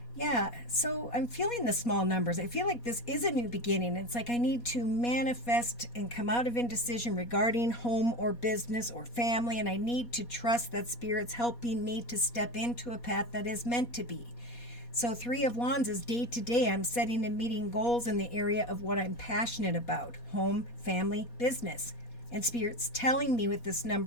Yeah, so I'm feeling the small numbers. I feel like this is a new beginning. It's like I need to manifest and come out of indecision regarding home or business or family, and I need to trust that Spirit's helping me to step into a path that is meant to be. So Three of Wands is day to day. I'm setting and meeting goals in the area of what I'm passionate about: home, family, business. And Spirit's telling me with this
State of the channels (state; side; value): late; right; 4.2 ms